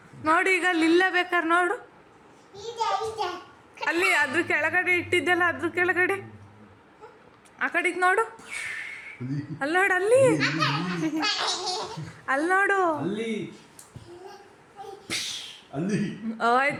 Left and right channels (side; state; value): both; identical; correlation 1.00